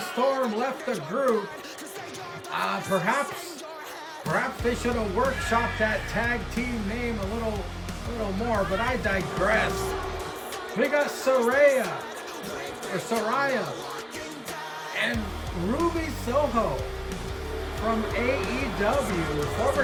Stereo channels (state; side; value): identical; both; correlation 1.00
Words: left the group, perhaps they should have workshopped that tag team name a little more, but I digress. We got Saraya and Ruby Soho from AEW,